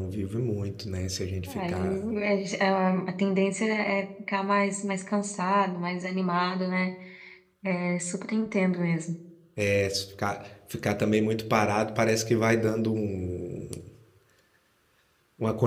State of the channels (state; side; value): identical; both; correlation 1.00